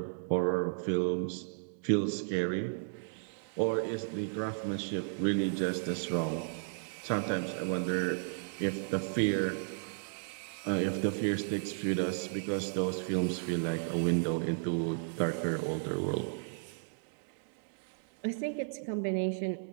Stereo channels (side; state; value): left; silent; digital silence